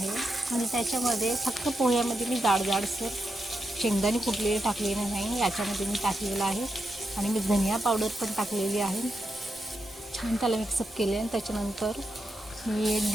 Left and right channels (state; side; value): normal; both; correlation 0.86